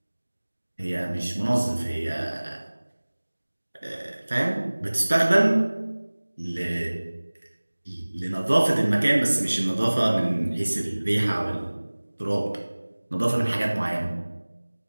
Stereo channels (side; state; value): both; inverted; correlation -1.00